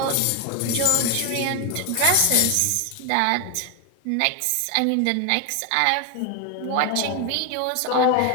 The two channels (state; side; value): different; both; correlation 0.01